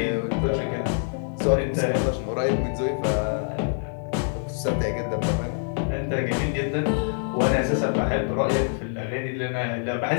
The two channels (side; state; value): right; silent; digital silence